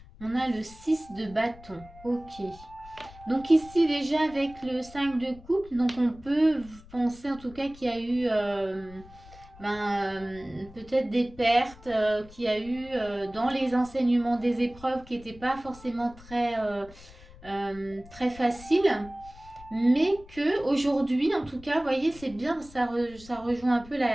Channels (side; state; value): left; noise; rumble, 20 dB below the sound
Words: On a le 6 de bâton, ok. Donc ici déjà avec le 5 de coupe, donc on peut penser en tout cas qu'il y a eu peut-être des pertes qu'il y a eu dans les enseignements des épreuves qui n'étaient pas forcément très faciles. Mais que aujourd'hui, en tout cas, vous voyez, c'est bien, ça rejoint un peu